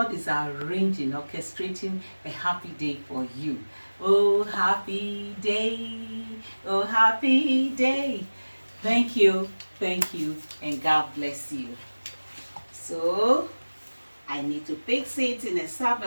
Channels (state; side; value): inverted; both; correlation -1.00